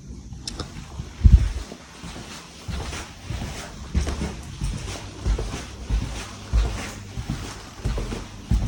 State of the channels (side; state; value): both; identical; correlation 1.00